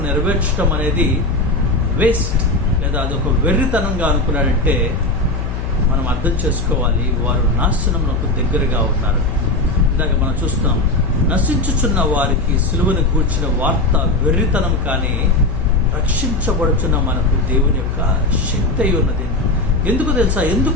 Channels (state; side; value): noise; left; hum, 5 dB below the sound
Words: నెరవేర్చడం అనేది వేస్ట్, లేదా అదొక వెర్రితనంగా అనుకున్నాడంటే మనం అర్థం చేసుకోవాలి, వారు నాశనమునకు దగ్గరగా ఉన్నారు. ఇందాక మనం చూస్తున్నాం, నశించుచున్న వారికి సిలువను గూర్చిన వార్త వెర్రితనం, కానీ రక్షించబడుచున్న మనకు దేవుని యొక్క శక్తి అయి ఉన్నది. ఎందుకు తెలుసా?